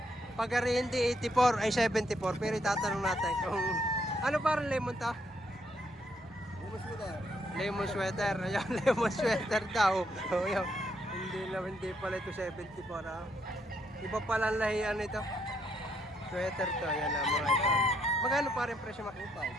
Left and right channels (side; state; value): both; normal; correlation 0.74